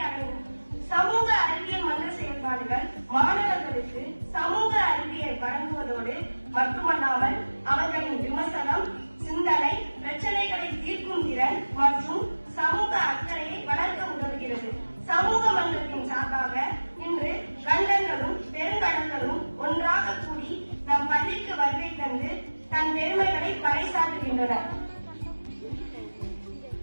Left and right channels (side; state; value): both; inverted; correlation -1.00